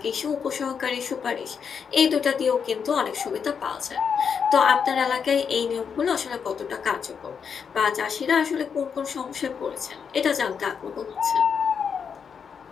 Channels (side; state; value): right; quieter; 6.6 dB